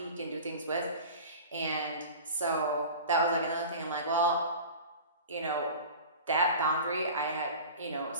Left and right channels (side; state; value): both; inverted; correlation -0.36